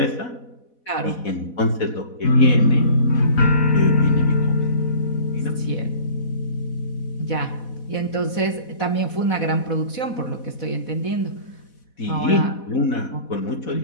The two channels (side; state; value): right; late; 4.1 ms